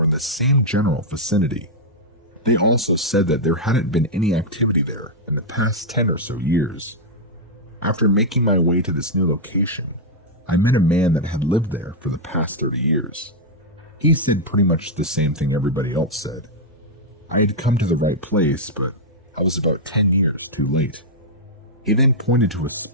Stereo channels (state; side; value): normal; both; correlation -0.04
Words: in the same general vicinity. They also said that there hadn't been any activity there in the past 10 or so years. After making my way to this new location, I met a man that had lived there for the past 30 years. He said pretty much the same thing everybody else said. I had come to the right place, but I was about 10 years too late. He then pointed to a